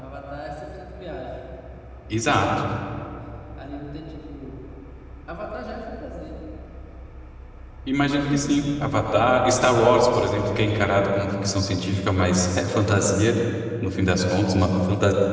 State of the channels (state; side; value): identical; both; correlation 1.00